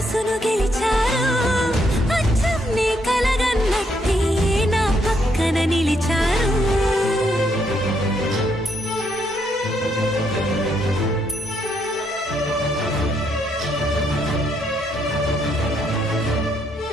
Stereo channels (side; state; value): both; normal; correlation 0.74